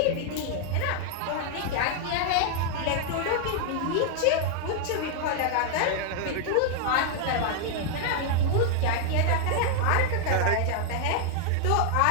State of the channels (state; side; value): different; both; correlation 0.00